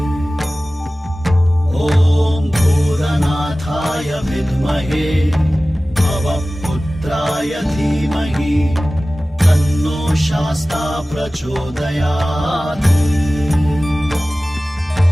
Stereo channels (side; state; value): both; normal; correlation 0.97